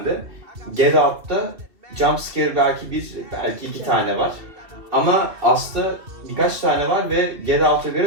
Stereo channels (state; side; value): late; left; 2.8 ms